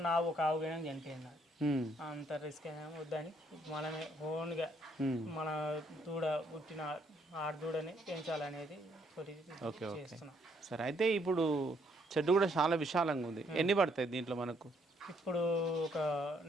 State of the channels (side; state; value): both; normal; correlation 0.69